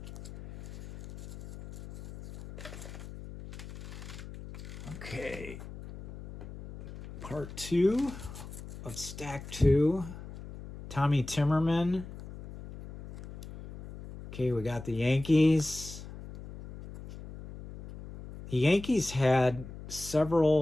Okay. Part 2 of Stack 2. Tommy Timmerman. Okay, we got the Yankees. The Yankees had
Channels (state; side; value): noise; left; hum, 13 dB below the sound